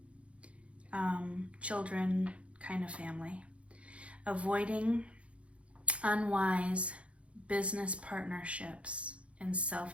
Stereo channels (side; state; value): left; late; 0.062 ms